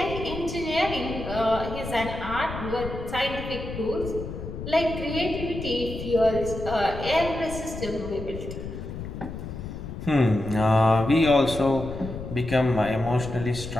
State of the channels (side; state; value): left; noise; rumble, 8 dB below the sound